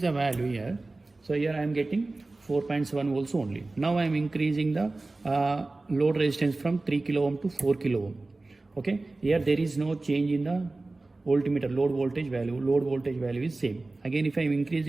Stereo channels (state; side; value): quieter; left; 3.2 dB